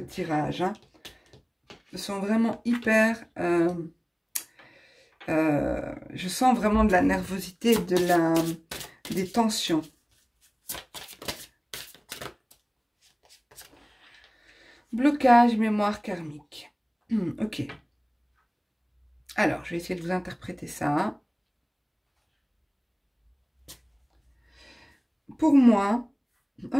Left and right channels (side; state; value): both; identical; correlation 1.00